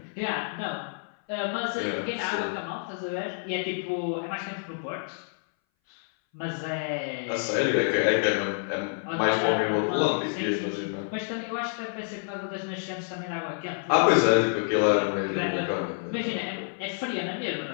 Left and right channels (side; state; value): right; silent; 59 dB below the other